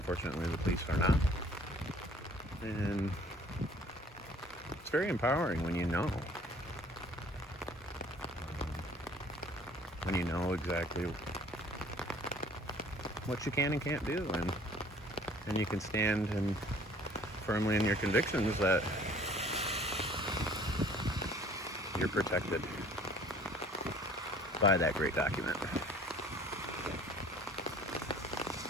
the police are not. And it's very empowering when you know. When you know exactly what you can and can't do. And you can stand and firmly in your convictions that you're protected by that great document.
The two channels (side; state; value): both; normal; correlation 0.53